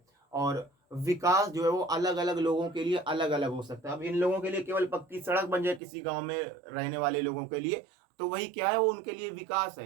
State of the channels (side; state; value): left; drops out; at 5.8 s